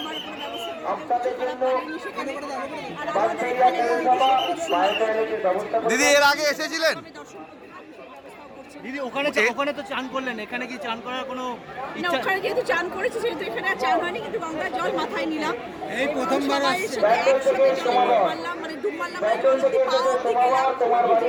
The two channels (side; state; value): both; identical; correlation 1.00